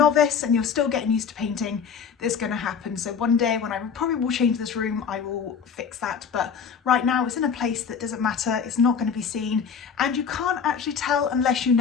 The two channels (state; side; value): quieter; right; 6.6 dB